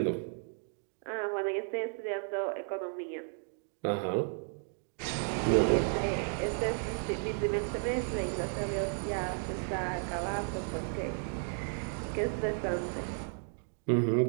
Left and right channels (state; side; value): silent; left; 55 dB below the other